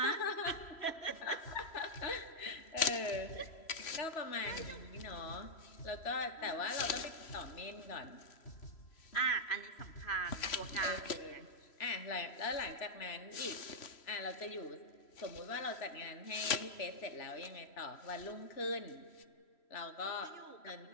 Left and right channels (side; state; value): right; late; 3.0 ms